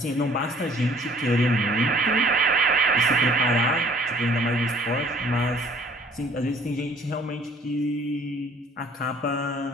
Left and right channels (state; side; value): normal; both; correlation 0.56